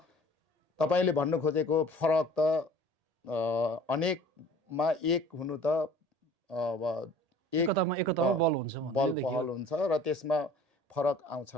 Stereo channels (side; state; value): left; late; 1.8 ms